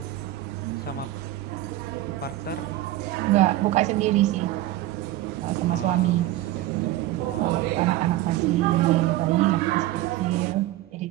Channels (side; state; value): left; quieter; 15.2 dB